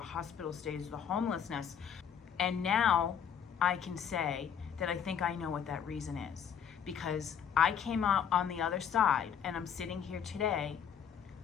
hospital stays, the homelessness. And now I can say that I think I know what that reason is, because I came out on the other side and I'm sitting here today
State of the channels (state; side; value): quieter; right; 8.2 dB